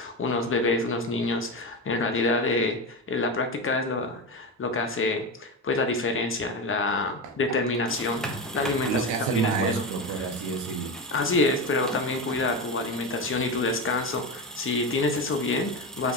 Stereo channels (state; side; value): normal; both; correlation 0.19